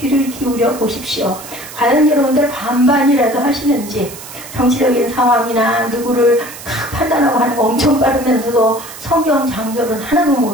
기울여 보십시오. 과연 여러분들 반반이라도 하시는지 정치적인 상황이나 누구를 탁 판단하고 하는 거 엄청 빠르면서도 성경 장절은 하나도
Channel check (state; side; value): noise; right; hiss, 14 dB below the sound